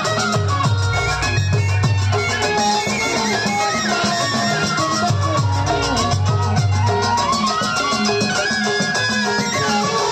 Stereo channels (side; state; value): both; identical; correlation 1.00